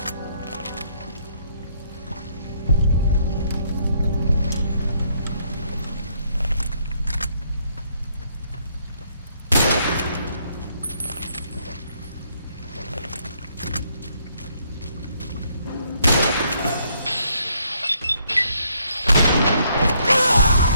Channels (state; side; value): inverted; both; correlation -0.70